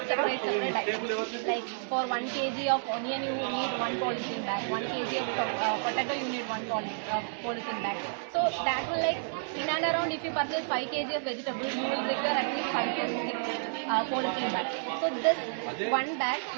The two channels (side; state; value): left; silent; 57 dB below the other